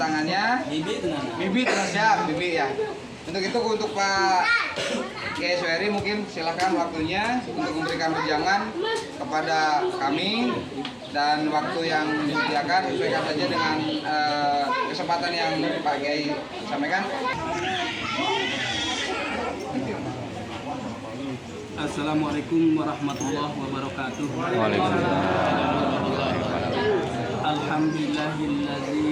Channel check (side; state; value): both; identical; correlation 1.00